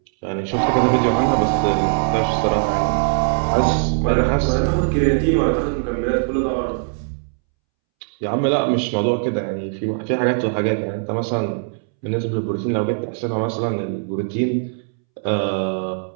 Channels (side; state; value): left; silent; 65 dB below the other